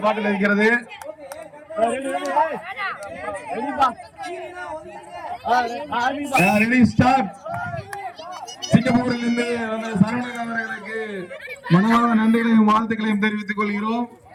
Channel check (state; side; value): identical; both; correlation 1.00